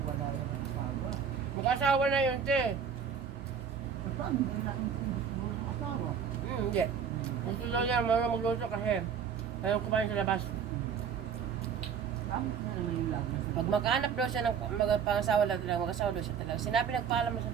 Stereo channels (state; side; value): quieter; left; 7.1 dB